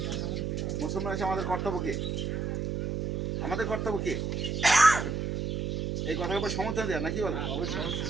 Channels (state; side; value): noise; right; hum, 1 dB below the sound